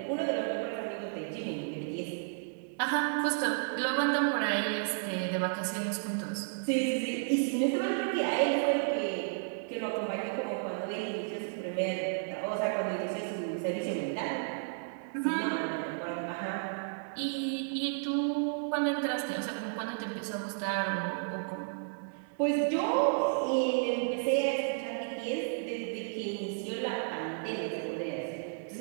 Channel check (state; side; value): silent; left; digital silence